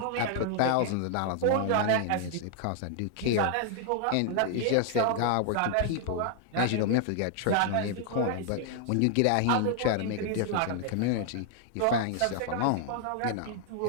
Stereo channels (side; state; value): both; different; correlation 0.00